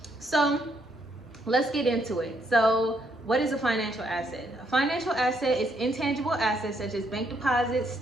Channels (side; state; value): both; normal; correlation 0.73